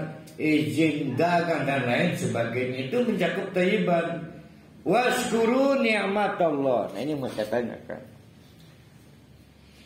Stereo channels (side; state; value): both; identical; correlation 1.00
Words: izin dagang dan lain sebagainya. Itu mencakup thayyiban. Washkuru ni'matallah. Nah, ini mau saya tanyakan.